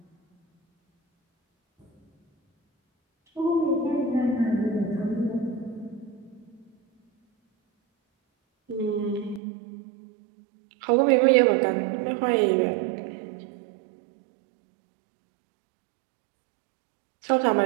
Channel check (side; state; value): left; drops out; at 9.4 s